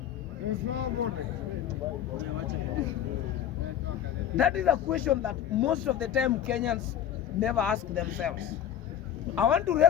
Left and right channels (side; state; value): right; quieter; 10.1 dB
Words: There's nobody. That is a question that most of the time Kenyans never ask themselves. I want to